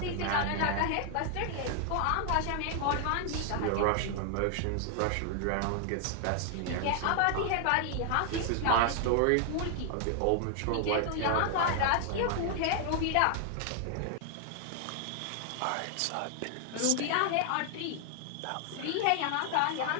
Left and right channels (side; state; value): both; different; correlation 0.00